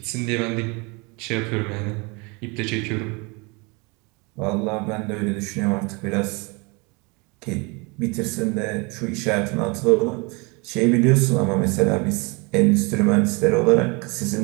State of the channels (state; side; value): quieter; left; 28.9 dB